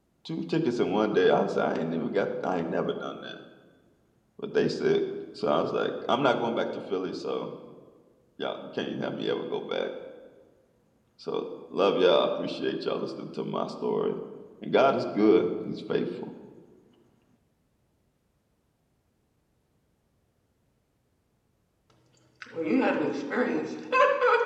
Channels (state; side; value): identical; both; correlation 1.00